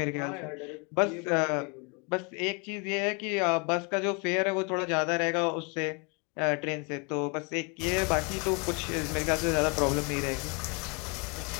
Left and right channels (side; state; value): right; quieter; 33.1 dB